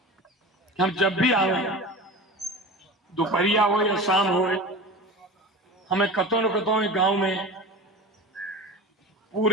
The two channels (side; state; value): both; normal; correlation 0.32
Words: कि हम जब भी आवे दोपहरिया हो या शाम हो, हमें कतों न कतों गांव में